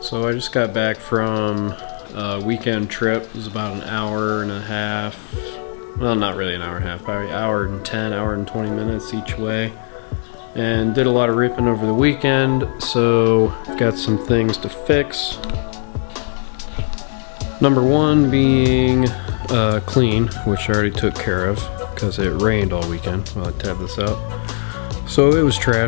So I just got back from a weekend trip. It was about an hour and a half. Well, not really an hour and a half, probably hour and 10, hour and 20 minutes each way. And did a lot of ripping over the weekend, so I've got some things to fix. Number one being clean, which I already took care of because it rained all weekend while I tabbed this out. So it was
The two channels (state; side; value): silent; right; 59 dB below the other